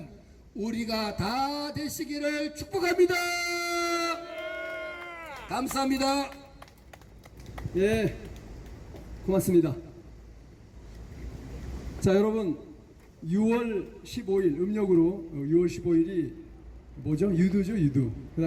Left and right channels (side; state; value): both; identical; correlation 1.00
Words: 우리가 다 되시기를 축복합니다. 감사합니다. 예, 고맙습니다. 자, 여러분 6월 15일 음력으로 6월 15일이 뭐죠? 유두죠, 유두. 그